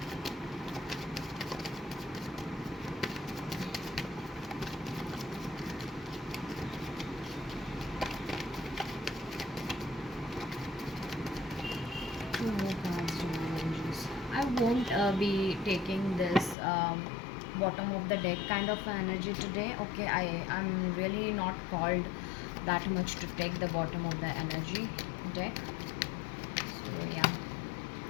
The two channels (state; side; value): drops out; right; at 16.6 s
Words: Two more cards, divine energies. I won't be taking this bottom of the deck kind of energy today, okay. I'm really not called that much to take the bottom of the energy deck. So yeah.